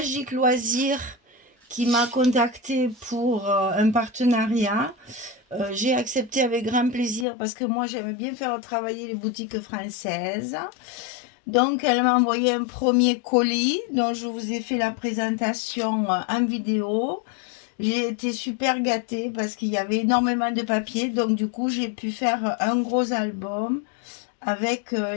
Loisirs qui m'a contacté pour un partenariat. J'ai accepté avec grand plaisir parce que moi j'aime bien faire travailler les boutiques françaises. Donc, elle m'a envoyé un premier colis dont je vous ai fait la présentation en vidéo. J'ai été super gâtée parce qu'il y avait énormément de papier. Donc, du coup, j'ai pu faire un gros album avec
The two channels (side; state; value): right; drops out; at 7.2 s